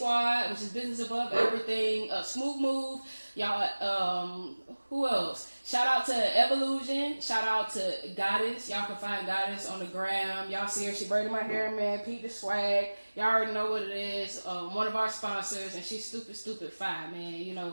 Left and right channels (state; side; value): inverted; both; correlation -1.00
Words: which is business above everything. Smooth Move, y'all. Who else? Shout out to Evolution. Shout out to Goddess. Y'all can find Goddess on the gram. Y'all see her. She braided my hair, man. Pete the Swag. Y'all already know what it is. One of our sponsors, and she's stupid fine, man. You